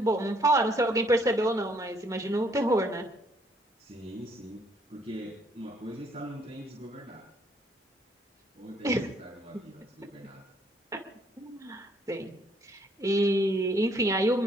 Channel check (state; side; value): normal; both; correlation 0.66